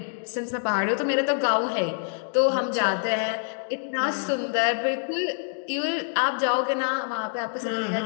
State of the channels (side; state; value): right; silent; digital silence